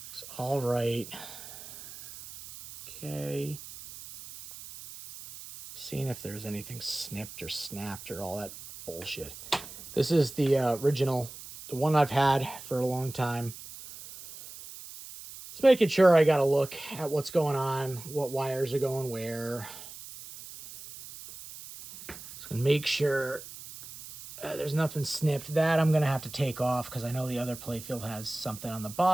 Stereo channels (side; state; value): right; noise; hiss, 14 dB below the sound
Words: It's all right. Okay. Seeing if there's anything snipped or snapped or all that bullshit. This is the original, the one I've had for a long time. Just making sure I got to look at what's going on, what wires are going where. Just gonna make sure there's nothing snipped. That I'm gonna have to take off because I know the other playfield has something on the